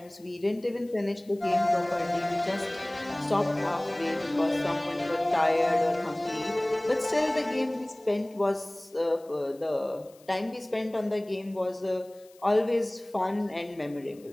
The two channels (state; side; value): noise; left; hiss, 28 dB below the sound